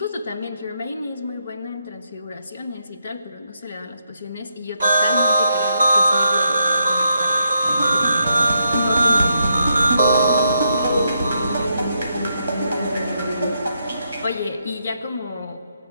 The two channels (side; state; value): both; inverted; correlation -0.80